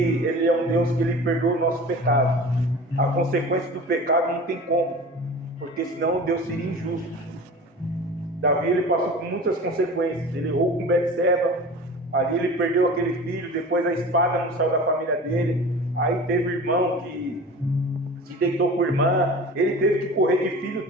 é um Deus que ele perdoa o nosso pecado. A consequência do pecado não tem como, porque senão Deus seria injusto. Davi, ele passou por muitas consequências. Ele errou com Betseba, ali ele perdeu aquele filho, depois a espada não saiu da família dele. Aí teve irmão que se deitou com a irmã, ele teve que correr de filho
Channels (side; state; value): both; normal; correlation 0.37